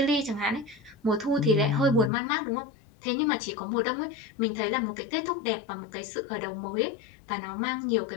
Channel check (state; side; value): drops out; right; at 2.1 s